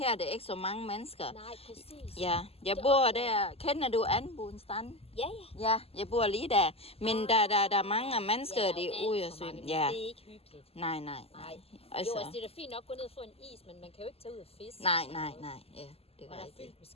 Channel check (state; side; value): late; right; 0.29 ms